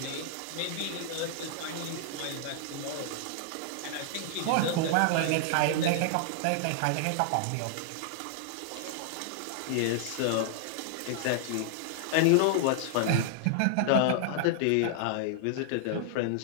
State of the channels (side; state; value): both; different; correlation -0.01